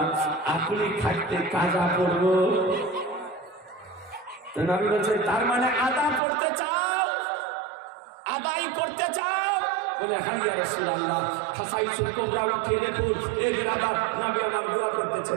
আপনি থাকতে কাজা পড়ব। তো নবী বলছেন, তার মানে আদা পড়তে চাও, আদায় করতে চাও? বলে, হ্যাঁ ইয়া রাসূলুল্লাহ। খাসাইসুল কুবরা উঠে দেখুন, এ বেরাদার নবী আমার দোয়া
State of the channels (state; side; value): drops out; left; at 6.2 s